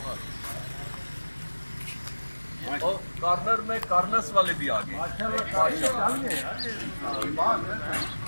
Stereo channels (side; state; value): both; inverted; correlation -1.00